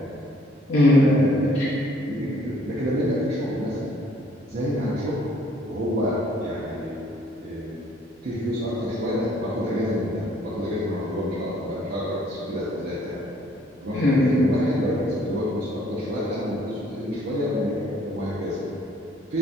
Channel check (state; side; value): normal; both; correlation 0.62